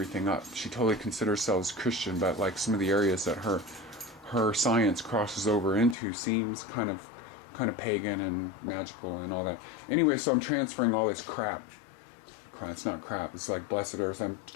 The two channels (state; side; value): drops out; right; at 6.0 s